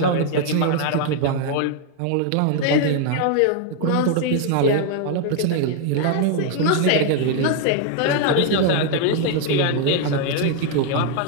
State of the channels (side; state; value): both; different; correlation 0.00